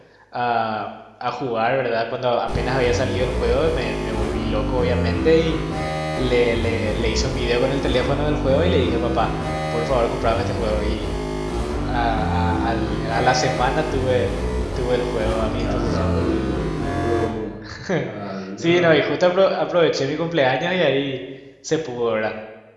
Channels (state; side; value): identical; both; correlation 1.00